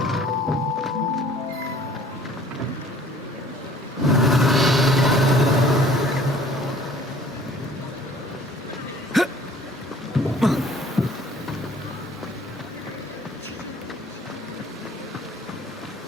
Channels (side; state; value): both; normal; correlation 0.52